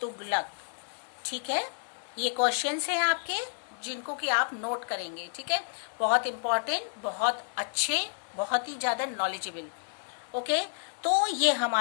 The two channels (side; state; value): right; silent; digital silence